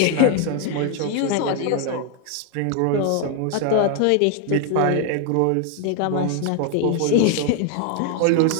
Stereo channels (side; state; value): both; different; correlation 0.01